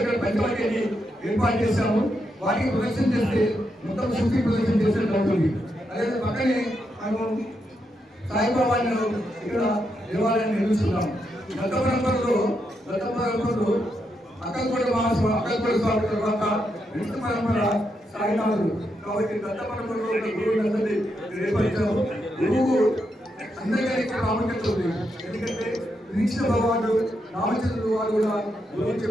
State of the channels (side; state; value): both; normal; correlation 0.82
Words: ఇక్కడ పంచవటిని ఏర్పాటు చేశాము. వాటికి ప్రదర్శన చేస్తే మొత్తం శుద్ధి ప్రదర్శన చేసినట్టు అవుతుంది. అదే పక్కనే మేము సాయిబాబాను ఇక్కడ దేవాలయాన్ని నిర్మిస్తున్నాం. దత్త పరంపరలో అక్కలకోట మహాస్వామి, అక్కలకోట స్వామి తర్వాత విష్ణు పరంపర సాయినాథుడు. కాబట్టి దత్త పరంపరలో ఉన్న గురువులందరినీ ఏర్పరిచాము. గురువు అందరికీ ప్రాముఖ్యత ఉంది. ఎందుకంటే కృష్ణ భగవానుడు రామచంద్రుడు వారు కూడా గురువు